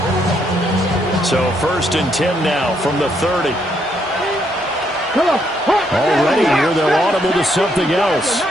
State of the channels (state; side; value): normal; both; correlation 0.74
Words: So 1st and 10 now from the 30. Already here, they're audible to something else.